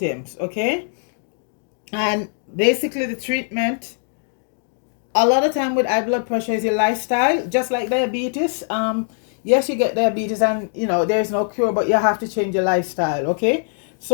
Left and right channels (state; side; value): silent; right; 65 dB below the other